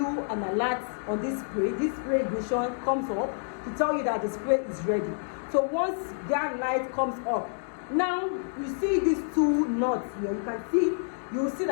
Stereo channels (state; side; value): silent; right; digital silence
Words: an alert on this spray. This spray ignition comes up to tell you that the spray is ready. So once that light comes up, now you see these two nuts here. You will see